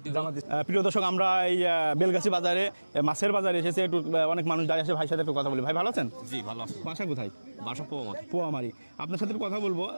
দিব। প্রিয় দর্শক, আমরা এই বেলগাছি বাজারে মাছের বাজারে এসেছে, একটু অনেক মানুষ দাঁড়িয়ে আছে, ভাইয়ের সাথে একটু কথা বলি। ভাই ভালো আছেন? জি ভালো আছি। বাসা কোথায়? বাসা পোয়ামারি। পোয়ামারি। আপনার সাথে কথা বলবো,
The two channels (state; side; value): inverted; both; correlation -1.00